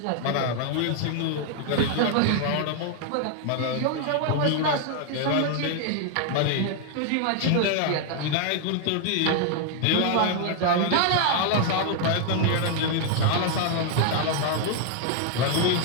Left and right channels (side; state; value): both; different; correlation 0.00